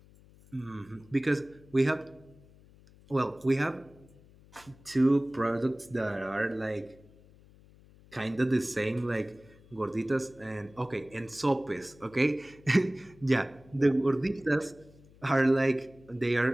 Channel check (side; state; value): left; noise; hum, 25 dB below the sound